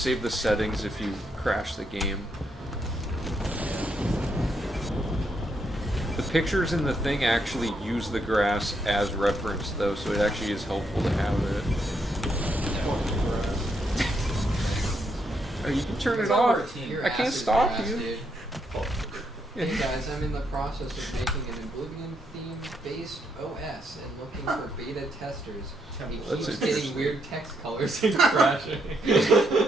the settings if you crash the game. The pictures in the thing actually use the grass as reference, though, so it actually is helpful to have it. Oh, you can turn it off. Your I ass can't is stop grass, you. dude. Hey guys, I'm in the process of making an Oblivion themed-based OS and looking for beta testers. It That's keeps getting interesting. weird text colors and crashing.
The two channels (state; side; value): normal; both; correlation 0.77